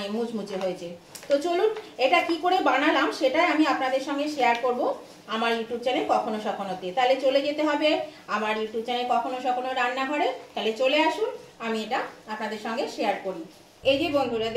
মুচমুচে হয়েছে। তো চলুন এটা কি করে বানালাম সেটাই আমি আপনাদের সঙ্গে শেয়ার করব আমার ইউটিউব চ্যানেল কখনো সখনোতে। তাহলে চলে যেতে হবে আমার ইউটিউব চ্যানেল কখনো সখনো রান্নাঘরে। তাহলে চলে আসুন, আমি এটা আপনাদের সঙ্গে শেয়ার করি। এই যে বন্ধুরা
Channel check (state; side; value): identical; both; correlation 1.00